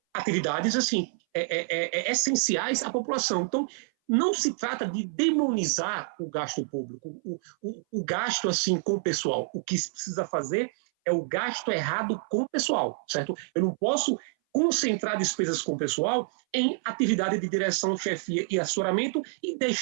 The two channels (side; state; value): left; silent; 58 dB below the other